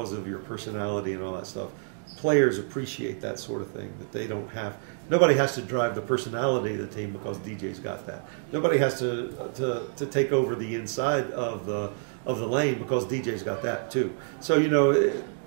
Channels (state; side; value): silent; left; 59 dB below the other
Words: of your personality and all that stuff, players appreciate that sort of thing, that they don't have. Nobody has to drive the personality of the team because DJ's got that. Nobody has to take over the inside of the lane because DJ's got that too. So, you know,